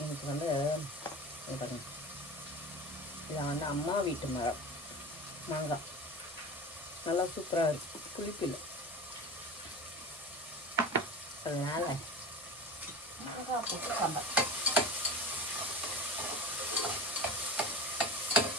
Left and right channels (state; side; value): normal; both; correlation 0.33